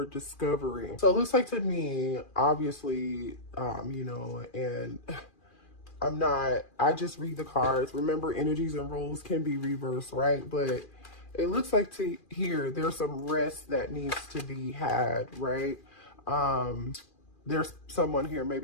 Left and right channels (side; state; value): right; late; 2.4 ms